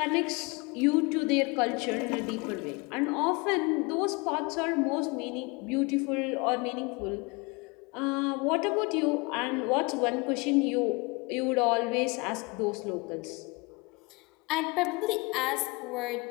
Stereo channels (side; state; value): right; quieter; 27.3 dB